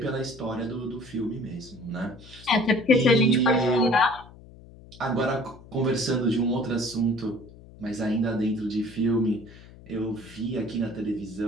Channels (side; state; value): left; noise; hum, 20 dB below the sound